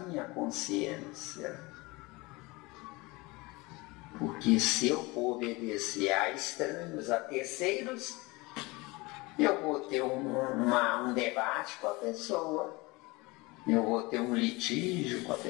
consciência. Porque se eu for obedecer a estranhos, a terceiros, eu vou ter um debate com a pessoa. Eu vou ter um litígio com a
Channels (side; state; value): right; quieter; 23.9 dB